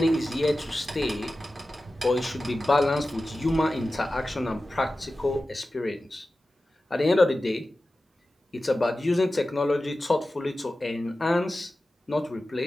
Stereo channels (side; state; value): both; normal; correlation 0.94